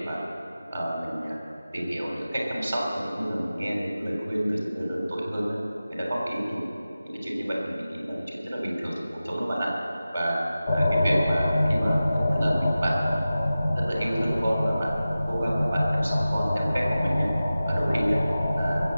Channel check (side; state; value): both; inverted; correlation -0.95